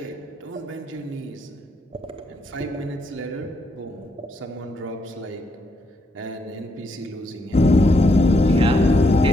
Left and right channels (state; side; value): normal; both; correlation 0.77